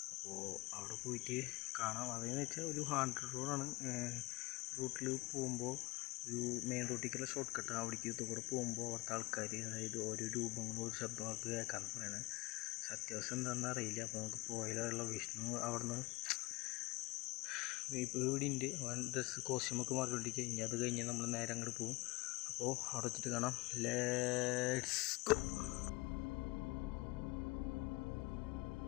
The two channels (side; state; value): right; quieter; 22.7 dB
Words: അപ്പോൾ അവിടെ പോയിട്ട് കാണാം. അതെന്ന് വെച്ചാൽ ഒരു ഹാൻഡ് റോഡാണ്. റൂട്ടിൽ പോകുമ്പോൾ ഒരു മെയിൻ റോട്ടിലേക്കുള്ള ഷോർട്ട് കട്ട്. അവിടേക്ക് ഇത് കൂടെ പോകുമ്പോൾ അവിടുത്തെ ആൾക്കാർ, അതായത് ഓരോ രൂപങ്ങളും ഒരു ശബ്ദമൊക്കെ കേൾക്കാമെന്ന് പറയണത്. സത്യാവസ്ഥ എന്താണെന്ന് അറിയില്ല. അപ്പോൾ നമുക്ക് പോയാലുള്ള വിഷ്ണു അവിടുന്ന് ഇപ്പോൾ ഇവിടെ ഉണ്ട്. ഡ്രസ്സ് കോസ്റ്റ്യൂമൊക്കെ മാറിക്കൊണ്ടിരിക്കുക. ഇനി അത് കഴിഞ്ഞ് നമ്മൾ നേരെ അങ്ങോട്ട് പോകും. അപ്പോൾ അവിടെ വെച്ചിട്ട് കാണാം. Let's go.